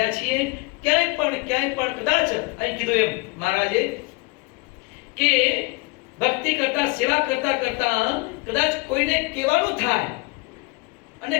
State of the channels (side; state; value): right; quieter; 26.5 dB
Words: છીએ. ક્યાંય પણ કદાચ અહીં કીધું એમ મહારાજે કે ભક્તિ કરતા સેવા કરતા કદાચ કોઈને કહેવાનું થાય અને